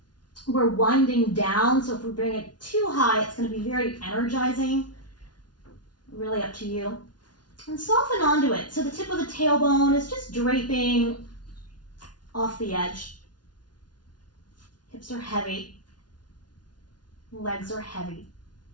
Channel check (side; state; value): right; late; 0.69 ms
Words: We're winding down, so if we bring it too high, it's going to be very energizing. Really up to you. And soften onto it. So the tip of the tailbone is just draping off the edge. Hips are heavy. Legs are heavy.